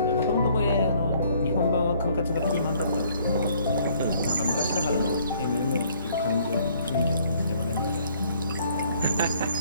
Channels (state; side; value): inverted; both; correlation -0.62